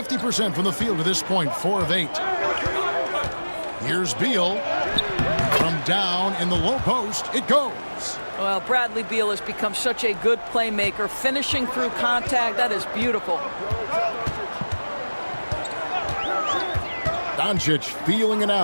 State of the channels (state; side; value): inverted; both; correlation -1.00